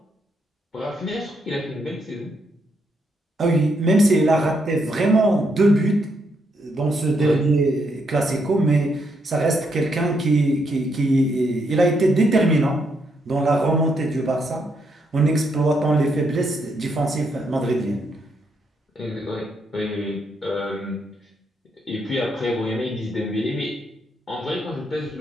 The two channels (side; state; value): both; normal; correlation 0.77